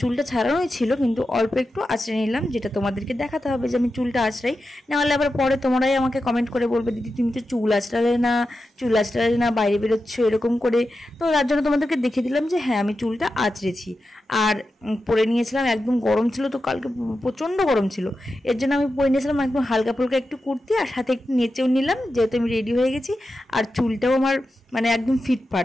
চুলটা ছাড়ানোই ছিল, কিন্তু অল্প একটু আঁচড়ে নিলাম, যেটা তোমাদেরকে দেখাতে হবে যে আমি চুলটা আঁচড়াই। নাহলে আবার পরে তোমরাই আমাকে কমেন্ট করে বলবে, দিদি তুমি তো চুল আঁচড়ালে না বাইরে বেরোচ্ছ এরকম করে। তো তার জন্য তোমাদেরকে দেখিয়ে দিলাম যে হ্যাঁ আমি চুলটা আঁচড়েছি। আর পরে নিয়েছিলাম, একদম গরম ছিল, তো কালকে প্রচণ্ড গরম ছিল, এর জন্য আমি পরে নিয়েছিলাম একদম হালকা ফুলকা একটু কুর্তি, আর সাথে একটু নেচেও নিলাম, যেহেতু আমি রেডি হয়ে গেছি। আর চুলটাও আমার মানে একদম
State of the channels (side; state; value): both; normal; correlation 0.91